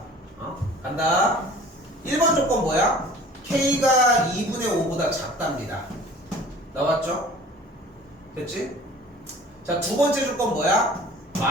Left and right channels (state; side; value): normal; both; correlation 0.46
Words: 간다. 1번 조건 뭐야? k가 2분의 5보다 작답니다. 나왔죠? 됐지? 자, 두 번째 조건 뭐야?